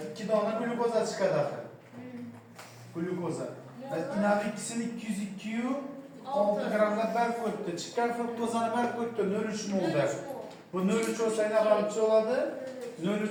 2 dona glyukoza chiqadi. Glyukoza. Inavik ikisini 202 6 gramda berk koydu. Çıkan fruktozanı berk koydu. 0,3 molda. Bu 0,3 olsa ne kalıcı oladı?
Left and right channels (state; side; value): identical; both; correlation 1.00